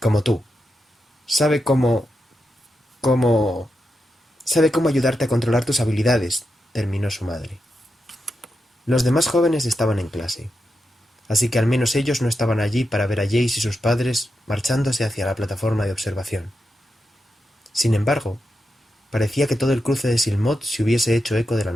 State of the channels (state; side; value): normal; both; correlation 0.87